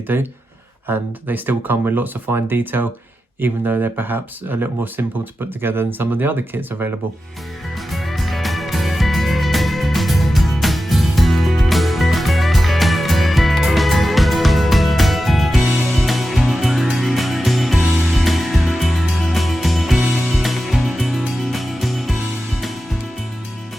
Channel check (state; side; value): normal; both; correlation 0.92